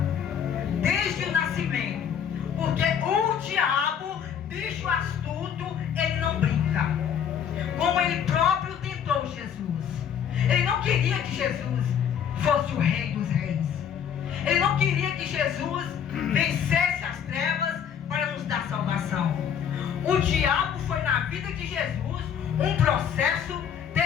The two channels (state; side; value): quieter; right; 8.3 dB